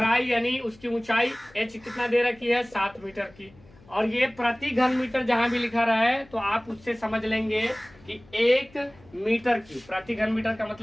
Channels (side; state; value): left; noise; hum, 26 dB below the sound